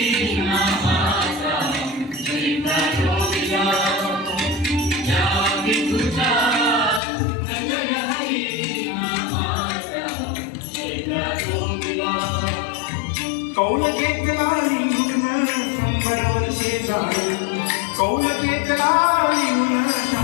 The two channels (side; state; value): right; drops out; at 7.0 s